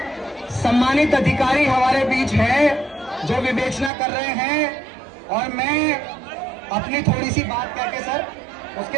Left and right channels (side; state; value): left; drops out; at 3.9 s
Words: सम्मानित अधिकारी हमारे बीच हैं जो विवेचना कर रहे हैं, और मैं अपनी थोड़ी सी बात कह के सर